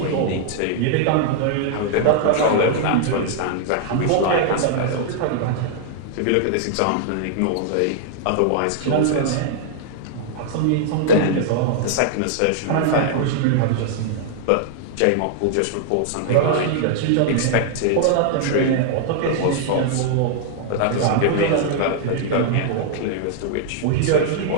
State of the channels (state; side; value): different; both; correlation -0.01